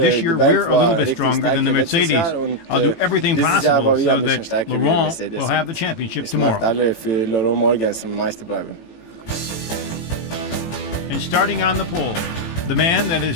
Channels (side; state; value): right; late; 18 ms